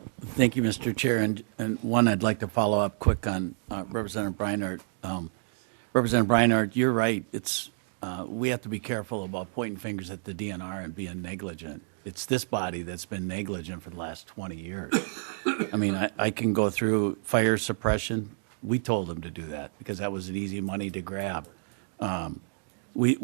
thank you, Mr. Chair. And one, I'd like to follow up quick on Representative Breinhardt. Representative Breinhardt, you're right. It's we have to be careful about pointing fingers at the DNR and being negligent. It's this body that's been negligent for the last 20 years. I mean, I can go through fire suppression. We told them to do that because that was an easy money to grab. Why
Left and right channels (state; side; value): silent; left; digital silence